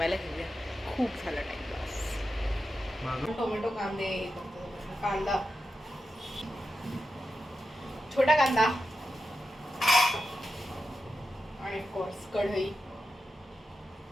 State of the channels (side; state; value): both; normal; correlation 0.90